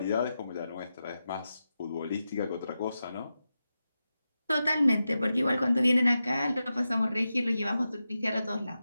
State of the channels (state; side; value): inverted; both; correlation -0.91